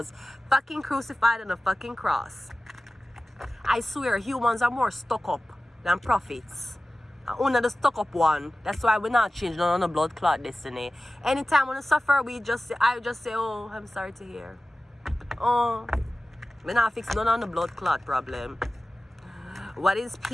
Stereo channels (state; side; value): normal; both; correlation 0.96